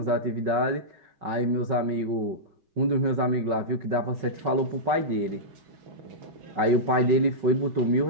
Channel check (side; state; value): left; late; 5.3 ms